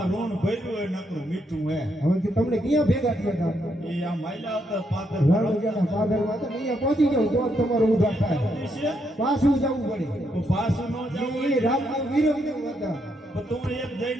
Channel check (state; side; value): normal; both; correlation 0.77